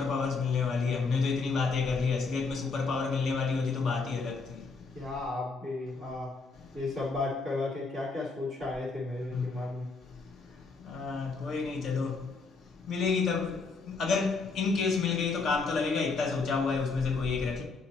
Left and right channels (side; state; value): right; quieter; 4.3 dB